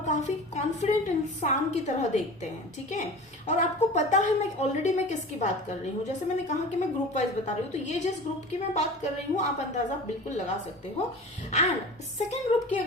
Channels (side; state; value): both; normal; correlation 0.37